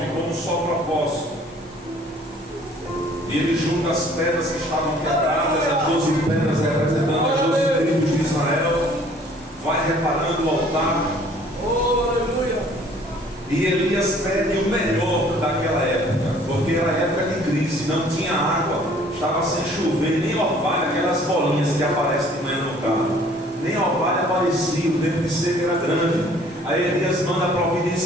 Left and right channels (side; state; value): both; normal; correlation 0.55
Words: como um só propósito. E ele junta as pedras que estavam quebradas, as 12 pedras representando as 12 tribos de Israel. Vai reparando o altar. Oh, aleluia. E Elias pede o melhor daquela época, porque era época de crise, não tinha água, estava sem chover, nem orvalho, aquelas bolinhas que aparecem de manhã no carro, nem orvalho aparecia, o tempo de seca era grande. Aí Elias manda